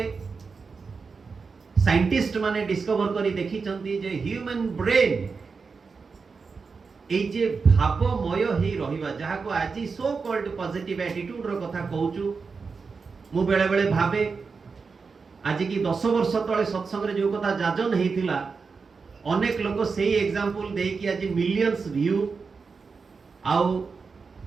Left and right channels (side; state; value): left; quieter; 4.9 dB